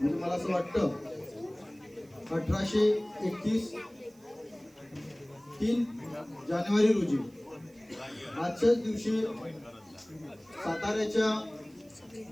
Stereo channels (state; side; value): noise; right; hiss, 30 dB below the sound